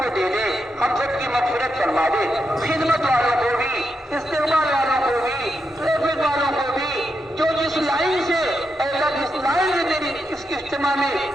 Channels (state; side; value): normal; both; correlation 0.84